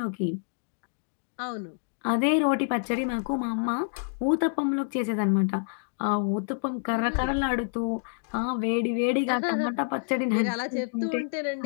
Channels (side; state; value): right; silent; digital silence